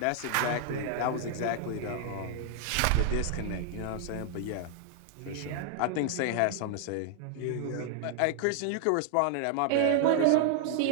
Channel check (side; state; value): both; different; correlation 0.00